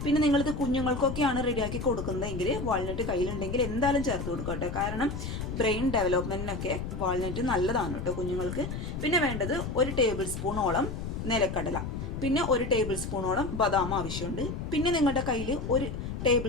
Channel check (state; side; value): noise; left; rumble, 5 dB below the sound